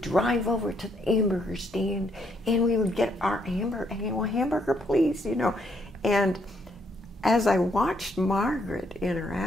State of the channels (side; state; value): both; normal; correlation 0.72